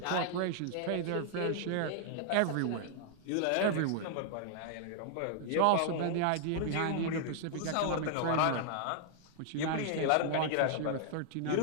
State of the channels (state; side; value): different; both; correlation -0.01